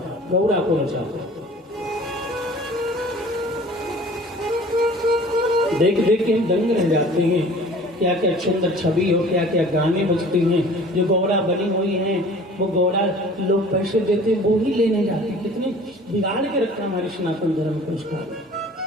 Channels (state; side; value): normal; both; correlation 0.47